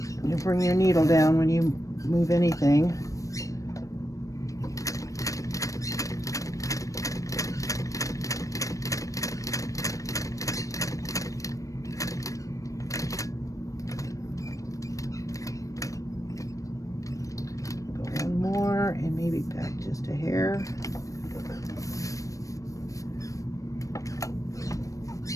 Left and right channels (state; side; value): late; right; 0.16 ms